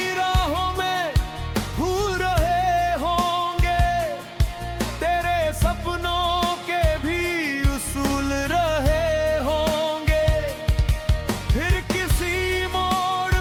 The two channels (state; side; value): identical; both; correlation 1.00